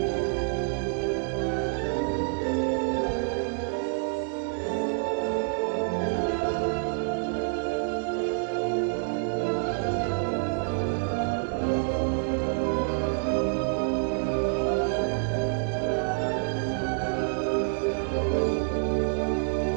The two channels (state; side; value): silent; left; digital silence